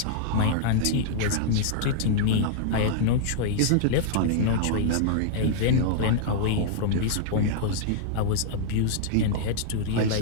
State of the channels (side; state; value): both; different; correlation -0.01